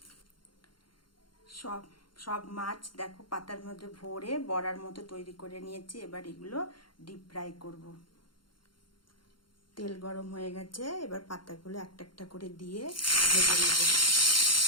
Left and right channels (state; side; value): late; right; 0.72 ms